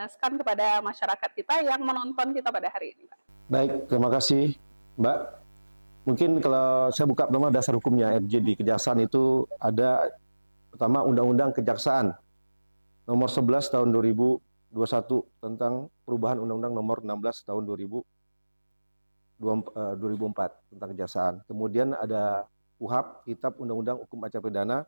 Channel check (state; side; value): inverted; both; correlation -1.00